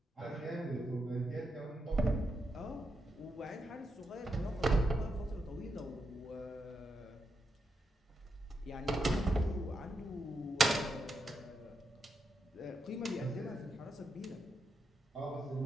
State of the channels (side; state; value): both; normal; correlation 0.84